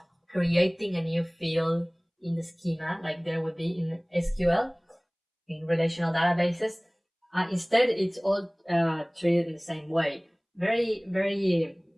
creating a new field in the schema like there would be in SQL, in relational databases. Instead, it's all treated in the same way. Very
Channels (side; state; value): both; identical; correlation 1.00